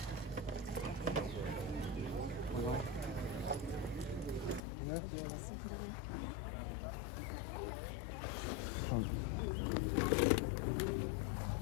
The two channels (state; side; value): drops out; right; at 4.6 s